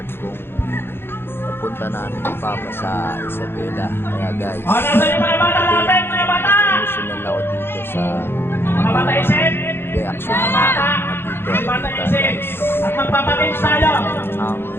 kung napunta namin ni Papa sa Isabela. Kaya guys, emotional ako dito sa reaction na dito guys. Ang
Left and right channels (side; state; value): right; late; 0.11 ms